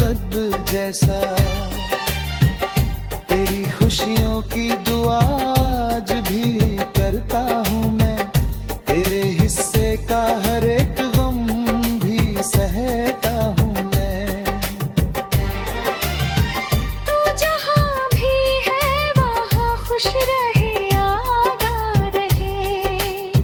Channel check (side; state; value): both; identical; correlation 1.00